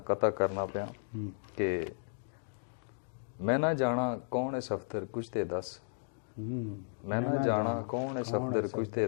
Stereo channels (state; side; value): silent; right; digital silence